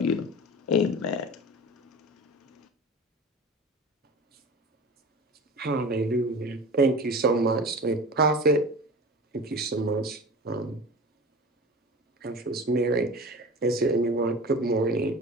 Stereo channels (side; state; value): both; normal; correlation 0.35